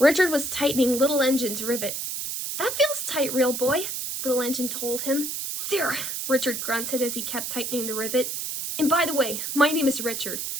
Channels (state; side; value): noise; right; hiss, 4 dB below the sound